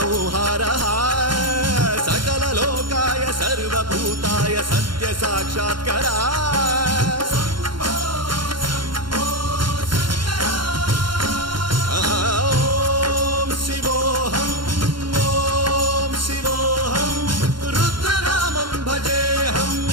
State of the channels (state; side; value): late; left; 0.72 ms